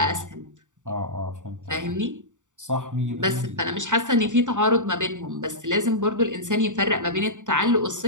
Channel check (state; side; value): late; left; 0.86 ms